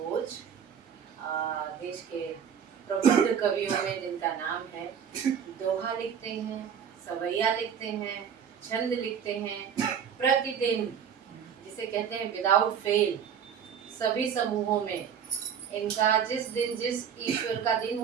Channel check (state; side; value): quieter; left; 7.8 dB